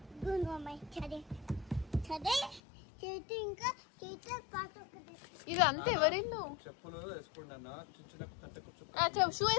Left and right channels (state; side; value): drops out; right; at 2.6 s